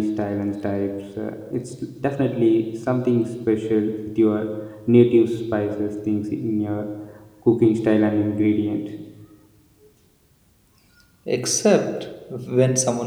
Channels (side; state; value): both; identical; correlation 1.00